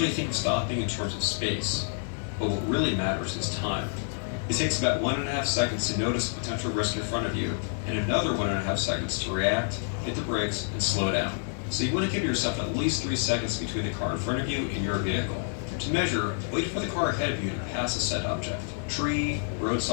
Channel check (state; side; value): silent; right; 59 dB below the other